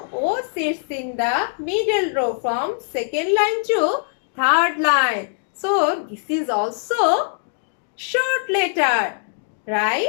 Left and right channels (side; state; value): right; silent; digital silence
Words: O sits in the middle row from second line to third line. So, this is also short letter,